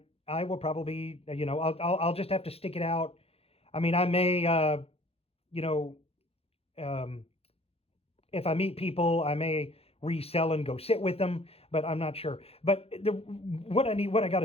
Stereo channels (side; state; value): right; late; 0.29 ms